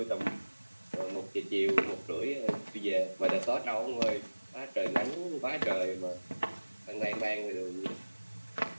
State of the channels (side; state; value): both; inverted; correlation -1.00